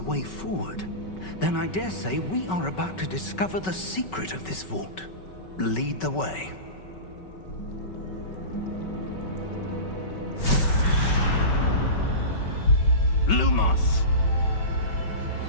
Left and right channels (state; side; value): late; right; 5.3 ms